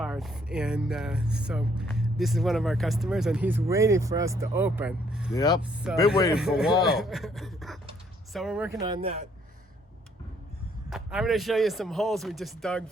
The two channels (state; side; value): normal; both; correlation 0.67